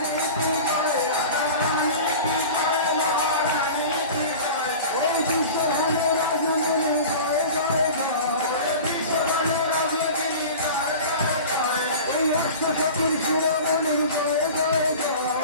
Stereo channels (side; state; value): both; inverted; correlation -0.36